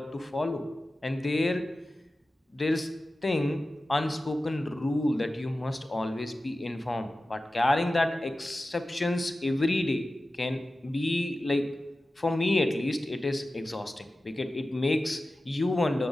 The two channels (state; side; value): normal; both; correlation 0.95